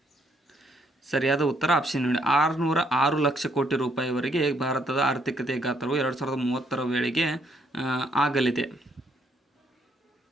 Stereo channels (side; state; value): both; normal; correlation 0.70